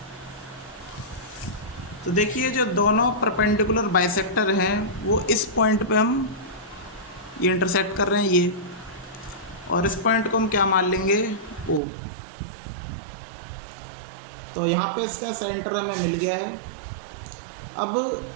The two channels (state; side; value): drops out; left; at 11.8 s